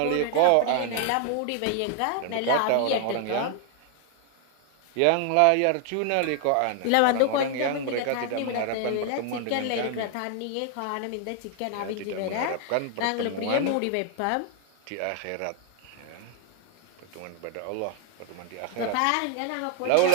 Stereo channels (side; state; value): both; different; correlation 0.00